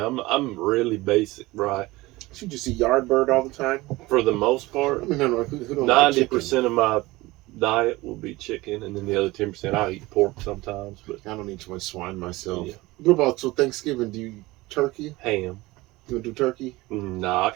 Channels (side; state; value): left; quieter; 20.3 dB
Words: I'm really basic, right? You just eat Yardbird all the time? For the most part. I mean, no, who don't 90% of my diet will be chicken, and then the other 10% I'll eat pork sometimes. But I don't eat too much swine myself. Yeah. What about Thanksgiving? Do you turkey? Ham. You do turkey? Nah, I